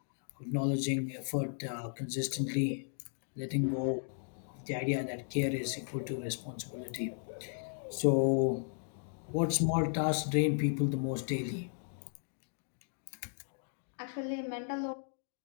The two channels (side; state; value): right; silent; digital silence